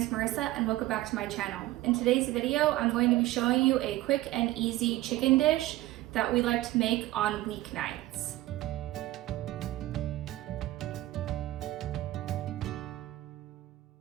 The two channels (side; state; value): left; quieter; 16.6 dB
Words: is Marissa and welcome back to my channel. In today's video, I'm going to be showing you a quick and easy chicken dish that we like to make on weeknights.